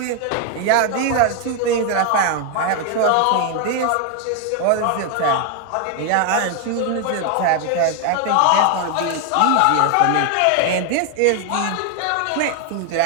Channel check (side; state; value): both; different; correlation 0.00